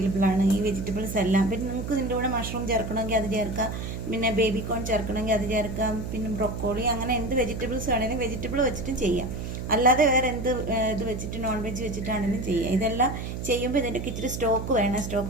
ആണ്, ഈ വെജിറ്റബിൾസ് എല്ലാം. പിന്നെ നിങ്ങൾക്ക് ഇതിൻ്റെ കൂടെ മഷ്റൂം ചേർക്കണമെങ്കിൽ അത് ചേർക്കാം, പിന്നെ ബേബി കോൺ ചേർക്കണമെങ്കിൽ അത് ചേർക്കാം, പിന്നെ ബ്രൊക്കോളി, അങ്ങനെ എന്ത് വെജിറ്റബിൾസ് വേണമെങ്കിലും വെജിറ്റബിൾ വെച്ചിട്ടും ചെയ്യാം. അല്ലാതെ വേറെ എന്ത് ഇത് വെച്ചിട്ട് നോൺ വെജ് വെച്ചിട്ടാണെങ്കിലും ചെയ്യാം. ഇതെല്ലാം ചെയ്യുമ്പോൾ ഇതിൻ്റെയൊക്കെ ഇച്ചിരി സ്റ്റോക്ക് വേണം.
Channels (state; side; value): noise; right; hum, 6 dB below the sound